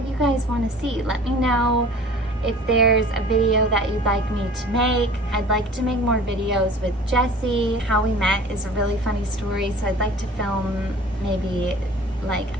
you guys want to see. Let me know if there's a video that you'd like me to make. I'd like to make more videos with Jessie. How we met is a really funny story, so I'd like to film maybe like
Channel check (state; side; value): normal; both; correlation 0.45